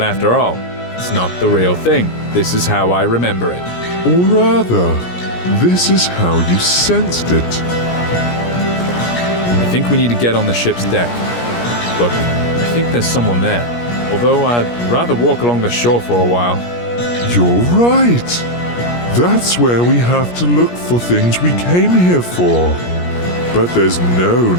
after all, it's not the real thing. This is how I remember it. Or rather, this is how you sensed it. I think we need to get on the ship's deck. Look, I think there's someone there, although I'd rather walk along the shore for a while. You're right. That's where we have to look for things we came here for. But there's no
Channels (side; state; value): right; late; 17 ms